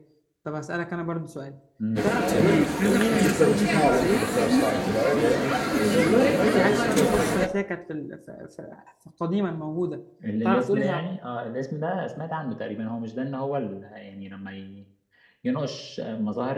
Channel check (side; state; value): both; identical; correlation 1.00